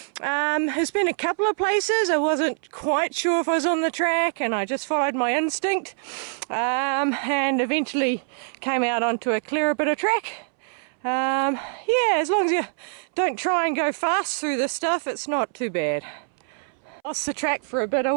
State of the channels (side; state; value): left; silent; 62 dB below the other